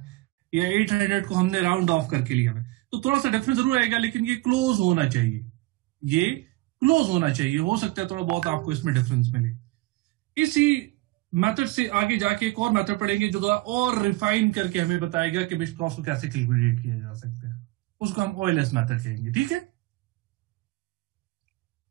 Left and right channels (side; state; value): left; quieter; 20.2 dB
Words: या 800 को हमने राउंड ऑफ करके लिया हुआ है, तो थोड़ा सा डिफरेंस जरूर आएगा, लेकिन ये क्लोज होना चाहिए, ये क्लोज होना चाहिए। हो सकता है थोड़ा बहुत आपको इसमें डिफरेंस मिले। इसी मेथड से आगे जाके एक और मेथड पढ़ेंगे जो और रिफाइन करके हमें बताएगा कि मिक्स कॉस्ट को कैसे कैलकुलेट किया जा सकता है। उसको हम ओएलएस मेथड कहेंगे। ठीक है?